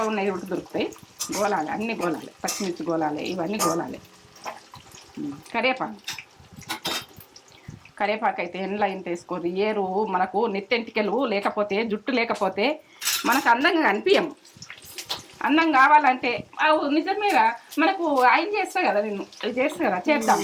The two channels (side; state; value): both; identical; correlation 1.00